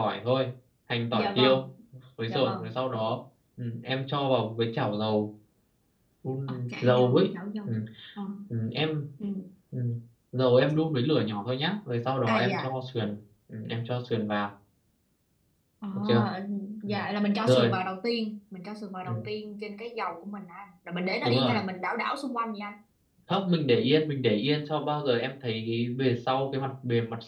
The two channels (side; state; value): both; identical; correlation 1.00